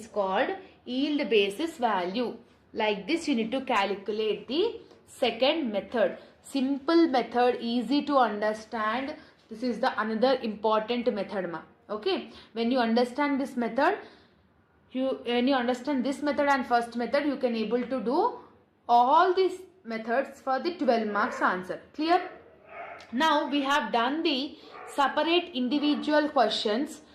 called yield basis value. Like this you need to calculate the second method. Simple method, easy to understand. This is the another important method ma. Okay. When you understand this method, when you understand this method and first method, you can able to do all these methods for the 12 marks answer. Clear? Now we have done the separate individual questions.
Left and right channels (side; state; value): both; identical; correlation 1.00